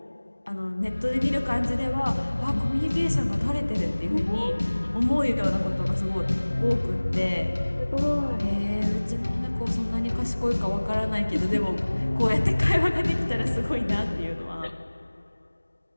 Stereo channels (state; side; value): inverted; both; correlation -1.00